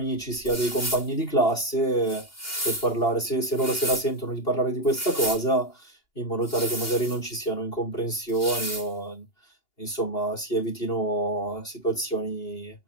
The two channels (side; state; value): right; late; 2.8 ms